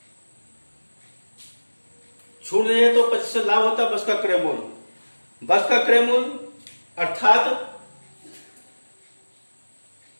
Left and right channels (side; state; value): both; inverted; correlation -1.00